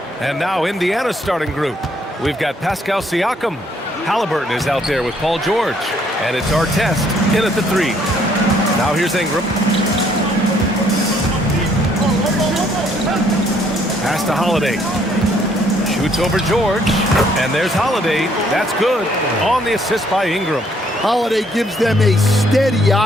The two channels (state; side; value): normal; both; correlation 0.66